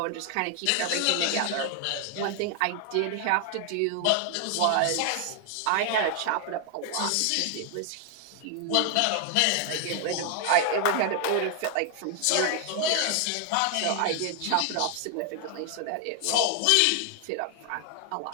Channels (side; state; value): both; different; correlation 0.00